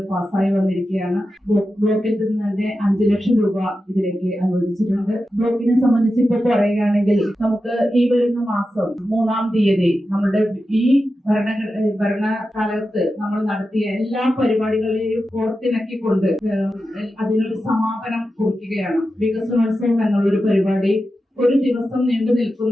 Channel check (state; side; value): normal; both; correlation 0.91